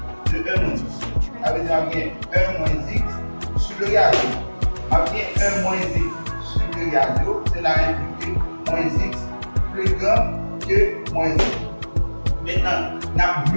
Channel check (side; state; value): both; inverted; correlation -1.00